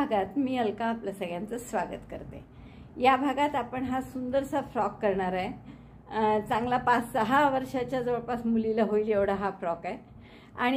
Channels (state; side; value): identical; both; correlation 1.00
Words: मी अलका आपलं सगळ्यांचं स्वागत करते। या भागात आपण हा सुंदरसा फ्रॉक करणार आहे। चांगला 5-6 वर्षाच्या जवळपास मुलीला होईल एवढा हा फ्रॉक आहे